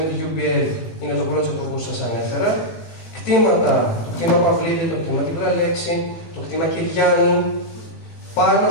τη UPL είναι το project που σας ανέφερα. Κτήματα, το κτήμα Παυλίδη, το κτήμα Τυμπραλέξη, το κτήμα Κυριάννη, πάνω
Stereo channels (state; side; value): late; right; 18 ms